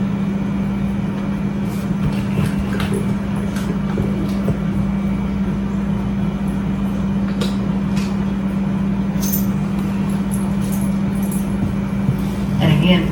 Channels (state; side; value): identical; both; correlation 1.00